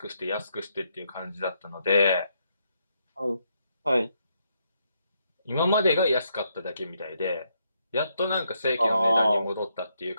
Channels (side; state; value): both; inverted; correlation -0.77